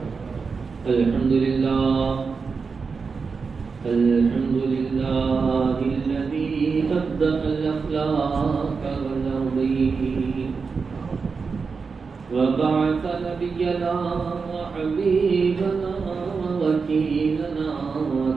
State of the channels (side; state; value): left; quieter; 5.0 dB